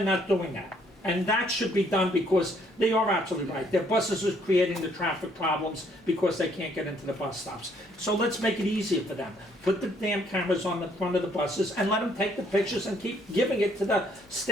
not doing that. And that should be done because they are absolutely right. Their buses are creating the traffic problems because they can't get into the bus stops. So let's make it easier for them. Put the damn cameras on the front of the buses and let them take the pictures and keep giving it to the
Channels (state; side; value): normal; both; correlation 0.66